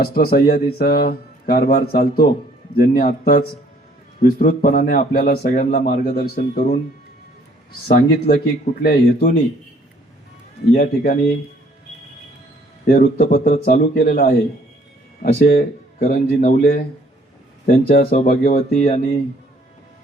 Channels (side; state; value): both; normal; correlation 0.61